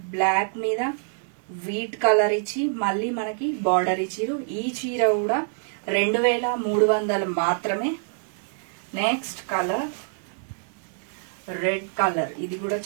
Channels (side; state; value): left; silent; 61 dB below the other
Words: బ్లాక్ మీద వీట్ కలర్ ఇచ్చి మళ్ళీ మనకి బార్డర్ ఇచ్చిరు. ఈ చీర కూడా 2300 మాత్రమే. నెక్స్ట్ కలర్ రెడ్ కలర్, ఇది కూడా